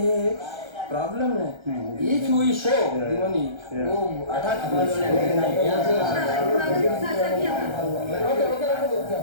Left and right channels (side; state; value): left; late; 1.3 ms